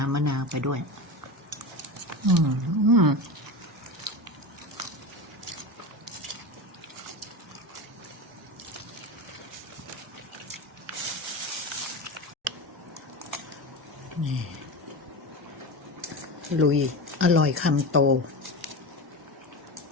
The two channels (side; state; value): both; normal; correlation 0.24